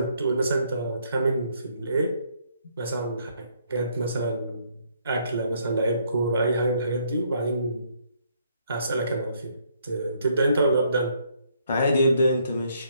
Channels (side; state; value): both; inverted; correlation -0.69